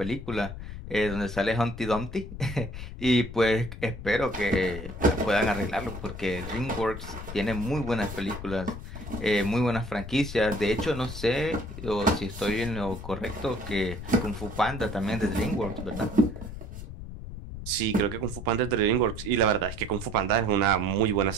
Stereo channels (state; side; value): noise; left; rumble, 10 dB below the sound